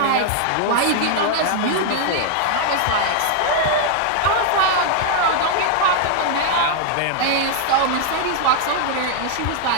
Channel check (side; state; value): both; different; correlation 0.00